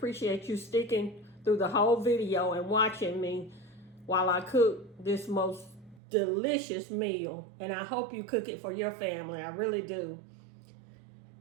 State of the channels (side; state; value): left; drops out; at 6.0 s